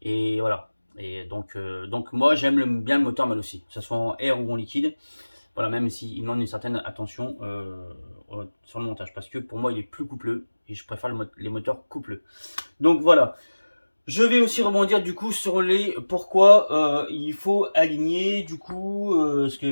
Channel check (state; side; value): inverted; both; correlation -1.00